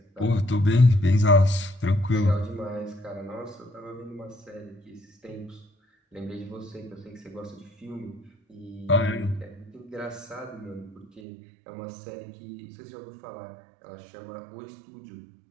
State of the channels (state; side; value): drops out; left; at 11.2 s